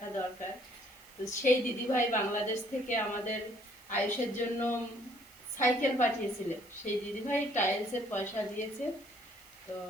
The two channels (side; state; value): right; noise; hiss, 24 dB below the sound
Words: দরকার। তো সেই দিদিভাই বাংলাদেশ থেকে আমাদের আয়ুষের জন্য সাইকেল পাঠিয়েছিলেন, সেই দিদিভাই টাইলসের পয়সা দিয়েছে। তো